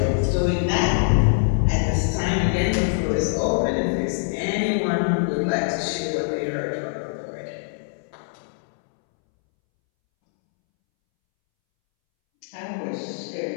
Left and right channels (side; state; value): right; silent; 63 dB below the other